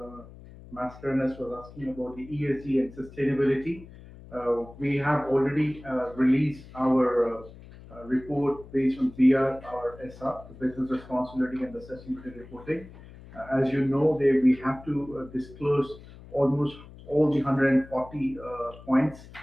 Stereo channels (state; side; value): noise; left; hum, 19 dB below the sound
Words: Mascarenas was asking about the ESG and sustainability, we have already released our report based on BR, our SR, the Business Responsibility and the Sustainability Reporting. As you know, we have to disclose almost all the 140 points,